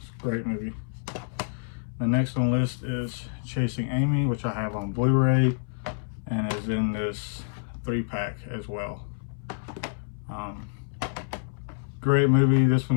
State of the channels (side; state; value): right; silent; 60 dB below the other